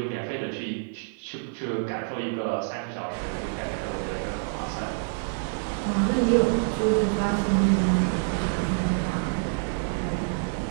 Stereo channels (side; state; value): left; silent; digital silence